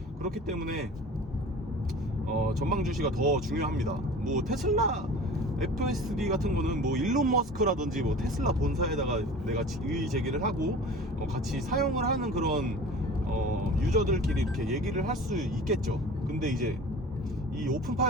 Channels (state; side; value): normal; both; correlation 0.40